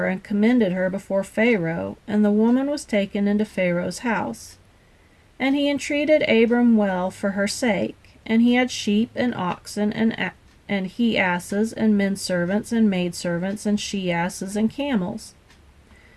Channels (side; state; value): both; identical; correlation 1.00